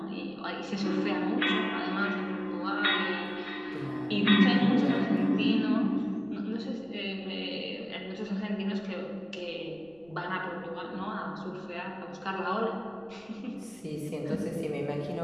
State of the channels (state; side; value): noise; right; rumble, 28 dB below the sound